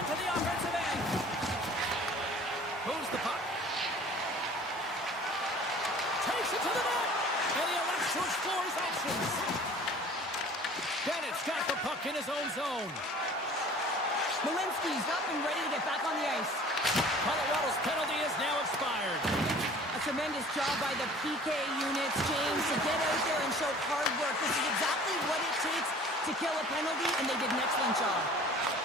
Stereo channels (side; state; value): both; normal; correlation 0.48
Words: the offensive end. Moves the puck. Takes it to the net. And he elects to explore his options. Bennett's got the puck in his own zone. Malinsky's up and ready to get back on the ice. Colorado's penalty is now expired. A tremendous job by the PK units, James, to get out there and show hard work. This is exactly what it takes to kill a penalty, and they did an excellent job.